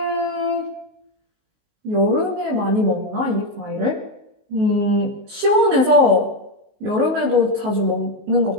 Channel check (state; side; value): late; left; 19 ms